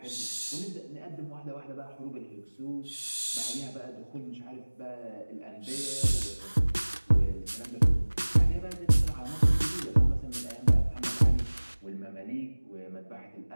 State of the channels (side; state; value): both; inverted; correlation -1.00